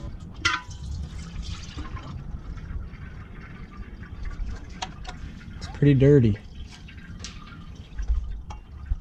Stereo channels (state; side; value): identical; both; correlation 1.00